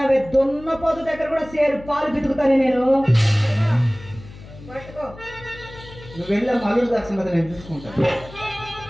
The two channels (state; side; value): noise; left; hum, 17 dB below the sound